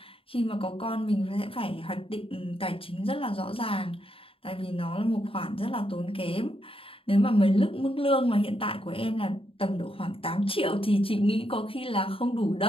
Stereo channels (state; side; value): late; right; 0.27 ms